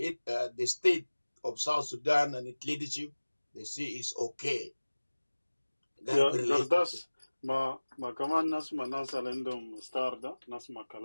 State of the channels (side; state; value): both; inverted; correlation -1.00